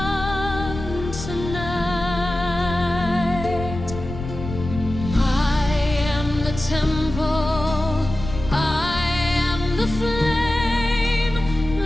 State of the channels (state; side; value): noise; left; rumble, 9 dB below the sound